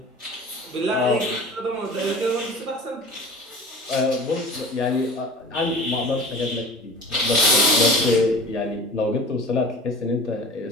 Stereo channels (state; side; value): normal; both; correlation 0.40